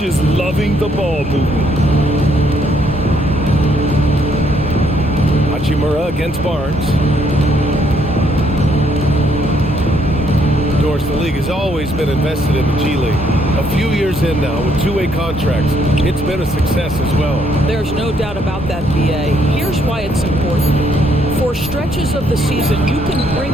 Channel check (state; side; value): normal; both; correlation 0.70